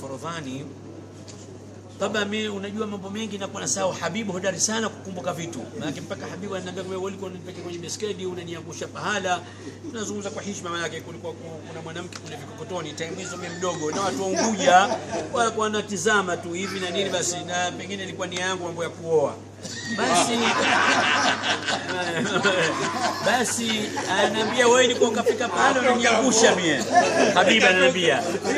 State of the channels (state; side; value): identical; both; correlation 1.00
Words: Taba mimi unajua mambo mengi na kwa nasahau. Habibu hodari sana kukumbuka vitu. Maana mpaka Habibu ananiambia wewe ulikuwa unanipeleka kwenye beskedi unaniangusha pahala. Tunazungumza kwa heshima, maana yake kulikuwa kuna mwanamke kule Vikokotoni time hizo mimi mdogo na watu wa Unguja walikuwa wanatizama tu hivi na nini basi, na pengine ilikuwa ni yangu mambo ya kuoa. Basi ananiambia wewe ulikuwa ukafika pahala unaniangusha mimi. Habibu ananiambia